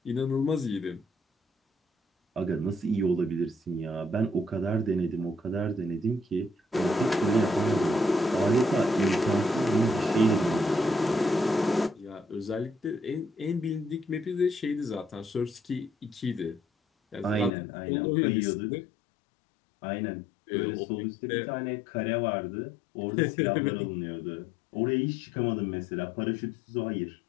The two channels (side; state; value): right; drops out; at 17.5 s